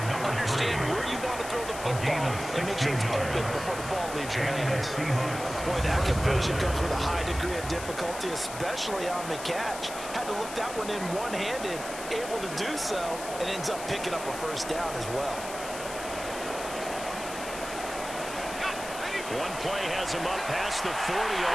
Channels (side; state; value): left; noise; hiss, 11 dB below the sound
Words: Understand where you want to throw the football. football and make sure it's open before the ball leaves your hands. Boy, that conversion comes with a high degree of difficulty, especially on the catch. Had to look that one in one-handed, able to do so, and ends up picking up a first down as well. One play has him up past the 40